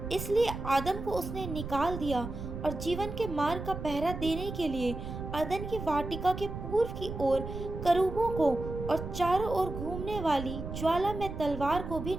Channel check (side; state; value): right; noise; rumble, 7 dB below the sound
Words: इसलिए आदम को उसने निकाल दिया और जीवन के मार्ग का पहरा देने के लिए अदन की वाटिका के पूर्व की ओर करूबों को और चारों ओर घूमने वाली ज्वाला में तलवार को भी